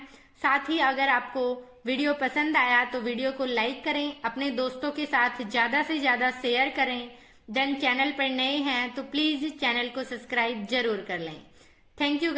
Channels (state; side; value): identical; both; correlation 1.00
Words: साथ ही अगर आपको वीडियो पसंद आया तो वीडियो को लाइक करें, अपने दोस्तों के साथ ज्यादा से ज्यादा शेयर करें। देन चैनल पर नए हैं तो प्लीज चैनल को सब्सक्राइब जरूर कर लें। Thank you